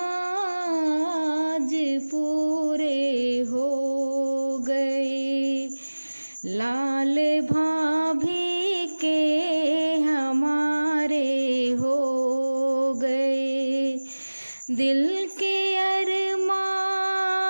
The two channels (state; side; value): inverted; both; correlation -1.00